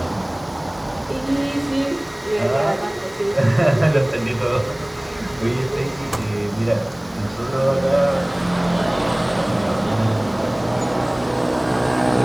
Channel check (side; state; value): left; noise; hiss, 30 dB below the sound